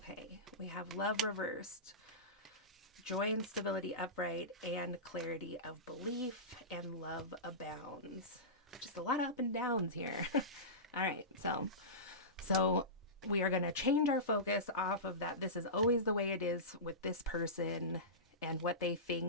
We have love reversed, joy and stability upright, and clarity of belief, and love abounds. Just a lot of up and downs here. All right, so we are going to change our focus off of that. This is always the way it is with this person and what they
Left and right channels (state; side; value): normal; both; correlation -0.19